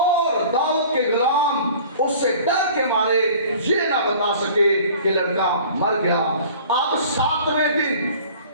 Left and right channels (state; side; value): inverted; both; correlation -0.46